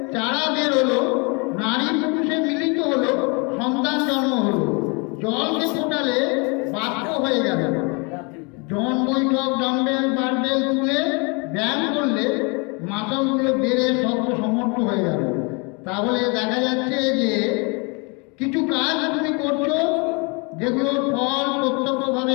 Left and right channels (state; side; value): quieter; right; 31.7 dB